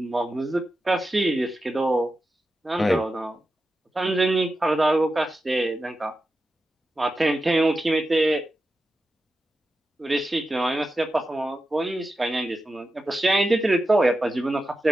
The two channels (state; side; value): normal; both; correlation 0.91